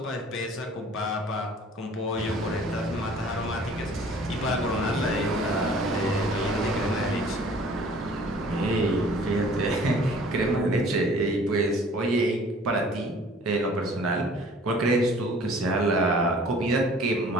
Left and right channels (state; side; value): normal; both; correlation 0.51